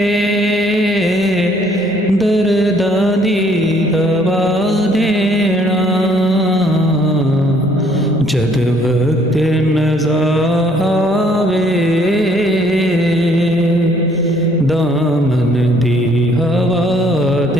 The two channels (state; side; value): normal; both; correlation 0.63